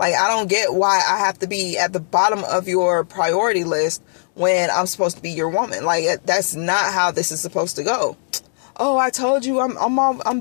I don't get why I have to be at the bottom of your priority list when I'm supposed to be your woman. Like, that's not how this is supposed to go. Oh, I told you I'm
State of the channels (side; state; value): right; silent; digital silence